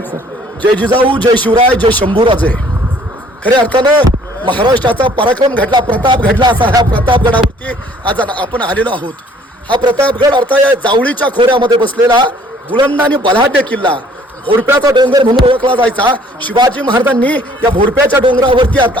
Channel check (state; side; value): normal; both; correlation 0.58